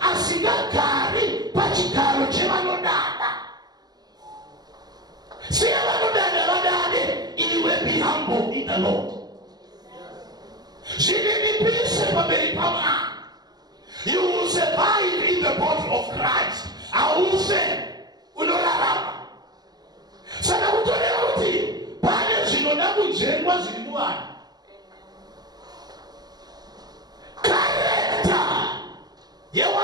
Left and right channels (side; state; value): left; late; 0.19 ms